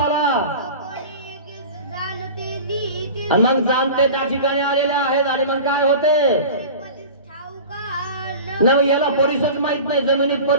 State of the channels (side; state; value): both; inverted; correlation -0.36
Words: आणि मग जाणते त्या ठिकाणी आलेले आहेत. आणि मग काय होते ना, याला परिसच माहित नाही. जमिनीत